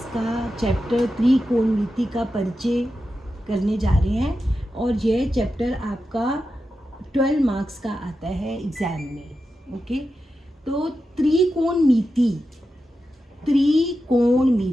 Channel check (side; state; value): both; normal; correlation 0.90